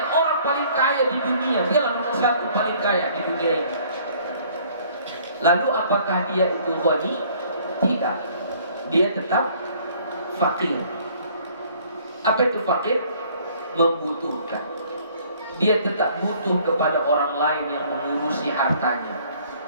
orang paling kaya di dunia, dialah nomor 1 paling kaya di dunia ini. Lalu apakah dia itu ghani? Tidak, dia tetap fakir. Apa itu fakir? Membutuhkan. Dia tetap butuh kepada orang lain yang mengurusi hartanya.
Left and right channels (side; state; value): both; inverted; correlation -0.57